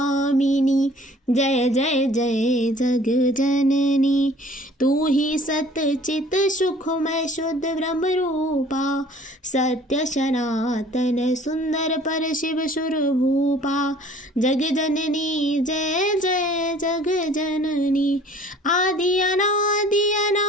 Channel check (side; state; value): both; normal; correlation 0.52